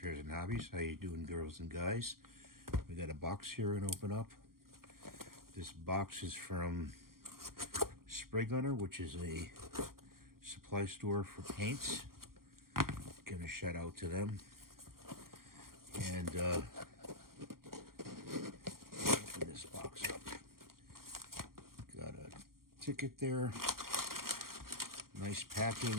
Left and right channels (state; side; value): late; left; 0.92 ms